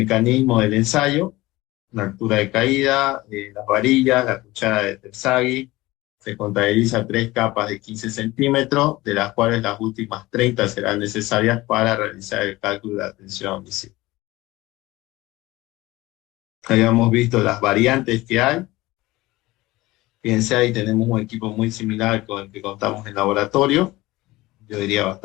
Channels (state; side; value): quieter; right; 19.3 dB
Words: del ensayo, la altura de caída, las varillas, la cuchara de Terzaghi. Se contabiliza 3 capas de 15 centímetros, de las cuales las últimas 30 serán necesarias para realizar el cálculo de la tensión visible. Habíamos visto las variantes que hay. Fíjense, ahí tenemos un equipo muy similar con el que contamos en laboratorio, yo diría